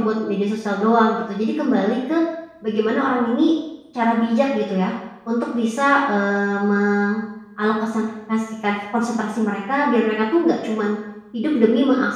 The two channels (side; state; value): both; identical; correlation 1.00